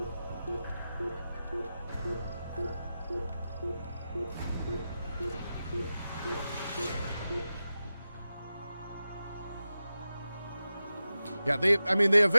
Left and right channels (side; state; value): both; inverted; correlation -0.93